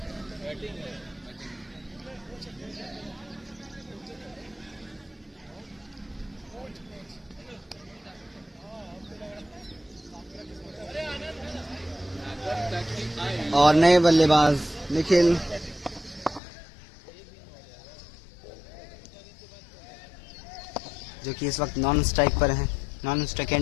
और नए बल्लेबाज निखिल, जो कि इस वक्त नॉन स्ट्राइक पर हैं, नॉन स्ट्राइक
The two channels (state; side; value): drops out; right; at 16.4 s